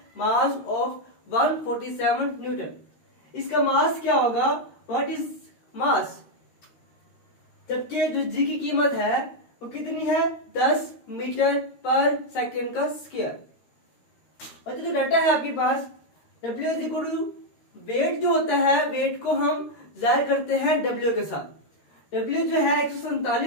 mass of 147 Newton. इसका मास क्या होगा? What is mass? जबकि जो जी की कीमत है वो कितनी है? 10 मीटर पर सेकेंड का स्क्वायर। बच्चों जो डाटा है आपके पास, W is equal to weight जो होता है, वेट को हम जाहिर करते हैं W के साथ। W जो है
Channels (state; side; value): late; right; 13 ms